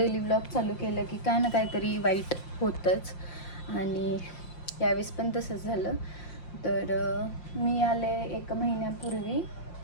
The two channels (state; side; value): late; right; 5.7 ms